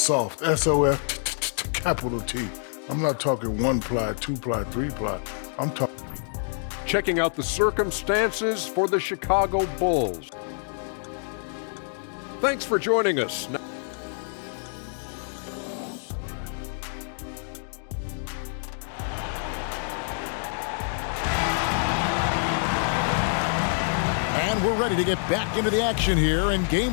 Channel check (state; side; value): silent; right; digital silence